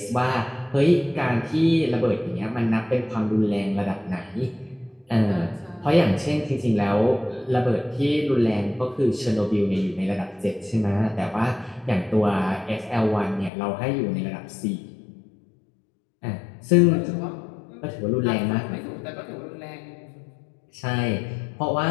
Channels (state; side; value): drops out; right; at 13.5 s